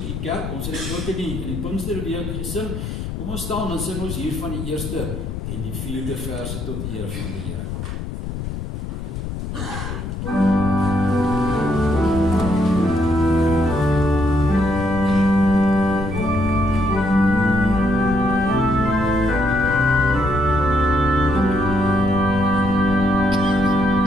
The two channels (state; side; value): noise; left; rumble, 6 dB below the sound